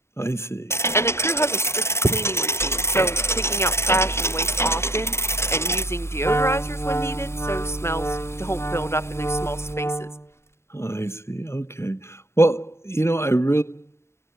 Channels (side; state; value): right; late; 0.13 ms